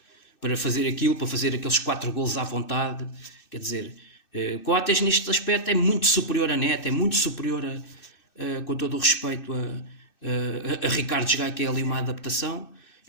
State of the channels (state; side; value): late; right; 2.6 ms